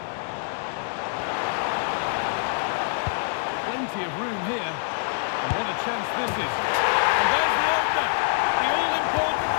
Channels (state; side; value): silent; right; digital silence